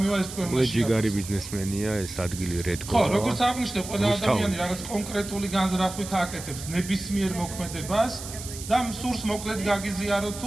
ეს თქვენ მაშინ? ჯიგარი ბიზნესმენია ეს ადგილი რედკო. ხო, როგორც აღნიშნე, ყველა ადამიანი რაღაც კონკრეტული განზრახვით აკეთებს ნებისმიერ მოქმედებას და სურს მოკლედ გაგიზიაროთ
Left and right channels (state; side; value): noise; right; hiss, 11 dB below the sound